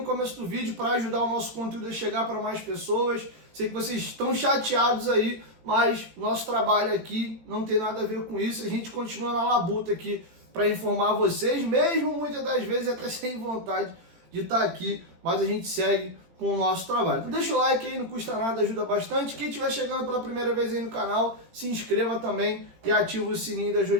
começo do vídeo para ajudar o nosso conteúdo a chegar para mais pessoas. Sei que vocês estão chateados aí, mas nosso trabalho aqui não tem nada a ver com isso. A gente continua na labuta aqui para informar vocês, mesmo muitas das vezes até sem vontade de estar aqui, mas a gente segue com o nosso trabalho. Então deixa o like aí, não custa nada, ajuda bastante. Quem estiver chegando pela primeira vez aí no canal, se inscreva também e ative o sininho das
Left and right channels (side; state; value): left; late; 18 ms